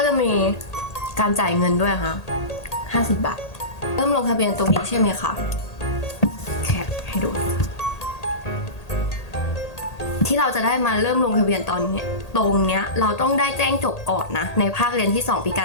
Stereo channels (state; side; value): late; right; 1.8 ms